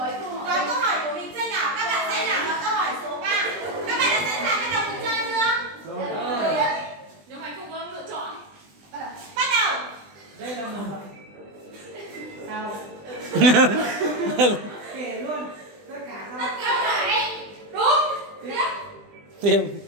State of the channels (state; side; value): late; left; 20 ms